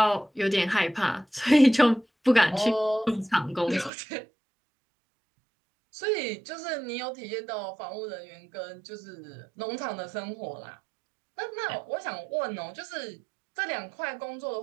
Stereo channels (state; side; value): drops out; left; at 3.9 s